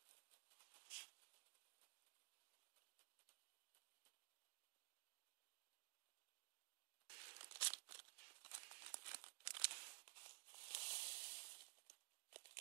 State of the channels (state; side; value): silent; left; digital silence